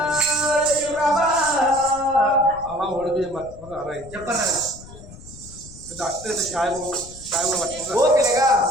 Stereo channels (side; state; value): left; noise; rumble, 18 dB below the sound